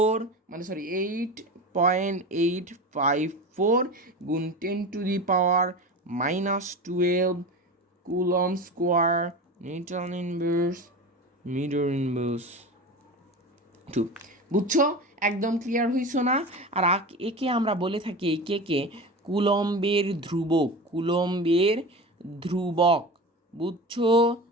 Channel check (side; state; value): both; normal; correlation 0.29